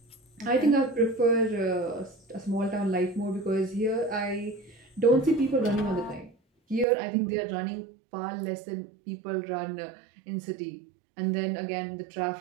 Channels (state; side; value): drops out; left; at 6.9 s